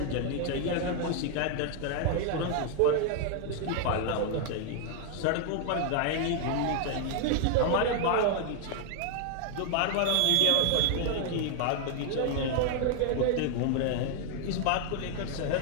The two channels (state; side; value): different; both; correlation 0.00